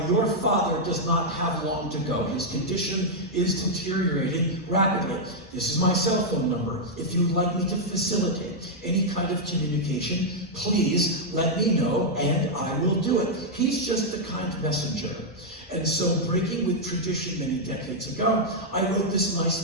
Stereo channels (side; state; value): both; normal; correlation -0.03